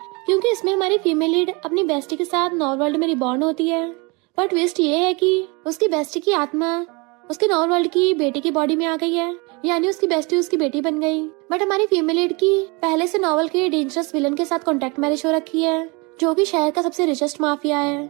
क्योंकि इसमें हमारी फीमेल लीड अपनी बेस्टी के साथ नॉवल वर्ल्ड में रिबॉर्न होती है। पर ट्विस्ट ये है कि उसकी बेस्टी की आत्मा उसके नॉवल वर्ल्ड की बेटी की बॉडी में आ गई है, यानी उसकी बेस्टी उसकी बेटी बन गई। बट हमारी फीमेल लीड की पहले से नॉवल के डेंजरस विलन के साथ कॉन्ट्रैक्ट मैरिज हो रखी है, जो कि शहर का सबसे रिचेस्ट माफिया है।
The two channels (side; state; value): left; quieter; 28.4 dB